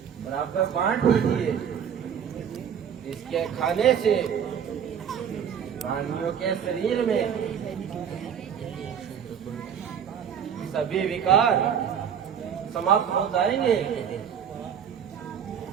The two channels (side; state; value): left; quieter; 8.1 dB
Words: बराबर बांट दीजिए। इसके खाने से रानियों के शरीर में सभी विकार समाप्त हो जाएंगे